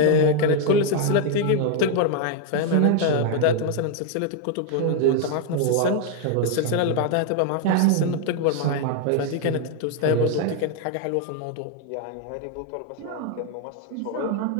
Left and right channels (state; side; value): different; both; correlation 0.00